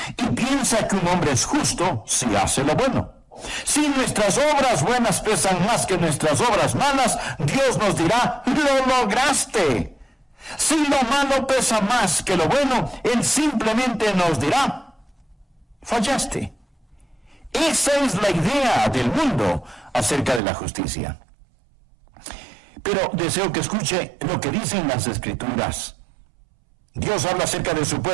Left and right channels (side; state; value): left; drops out; at 20.4 s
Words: Y piensa que un hombre es justo si hace lo bueno. Si nuestras obras buenas pesan más que nuestras obras malas, Dios nos dirá, lo lograste. Si lo malo pesa más que lo bueno, Él simplemente nos dirá, fallaste. Esa es la idea del mundo acerca de la justicia. Pero deseo que escuche lo que dicen las Escrituras. Dios habla acerca de su